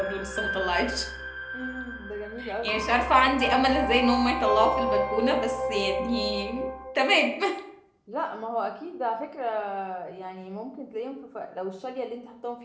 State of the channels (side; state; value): both; identical; correlation 1.00